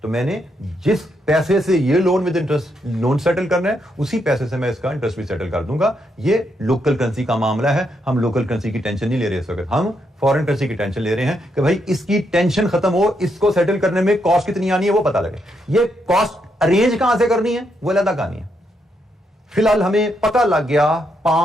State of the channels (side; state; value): both; normal; correlation 0.79